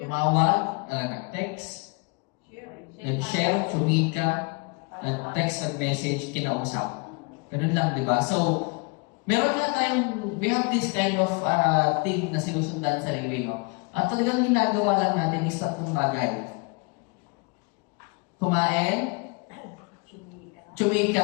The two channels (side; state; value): right; quieter; 31.8 dB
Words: nag-text, nag-share, sumika, nag-text, nag-message, kinausap. Ganun lang, di ba? So, meron nga tayong, we have this kind of thing na sinusundan sa sarili mo. At talagang ginagawa lang natin is tatlong bagay. Kumain,